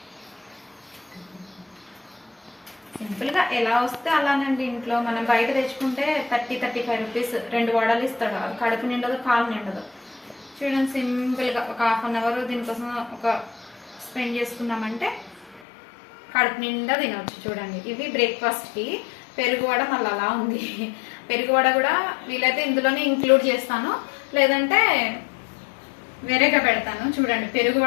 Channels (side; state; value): right; drops out; at 15.6 s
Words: సింపుల్గా ఎలా వస్తే అలానండి. ఇంట్లో మనం బయట తెచ్చుకుంటే 30-35 రూపీస్ 2 వడలు ఇస్తాడు. అది కడుపు నిండదు, కాలు నిండదు. చూడండి, సింపుల్గా ఒక ½ అన్ అవర్ దీనికోసం ఒక స్పెండ్ చేసుకున్నామంటే కడుపు నిండా తినవచ్చు. చూడండి, ఇవి బ్రేక్ఫాస్ట్కి. పెరుగు వడ మళ్ళీ అలా ఉంది. పెరుగు వడ కూడా వీలైతే ఇందులోనే ఇంక్లూడ్ చేస్తాను, లేదంటే వేరేగా పెడతాను. చూడండి, పెరుగు